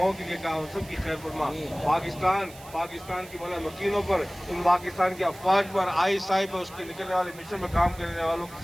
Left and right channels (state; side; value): noise; right; hiss, 20 dB below the sound